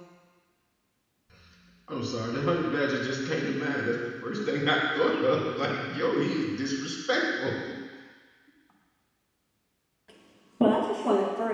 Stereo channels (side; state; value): both; identical; correlation 1.00